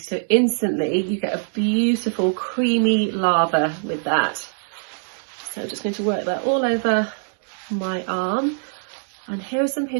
instantly you get a beautiful creamy lather with that. So I'm just going to work that all over my arm. And here are some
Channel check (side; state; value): left; silent; digital silence